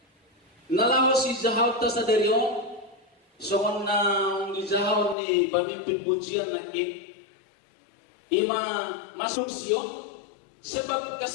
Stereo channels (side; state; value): right; drops out; at 5.2 s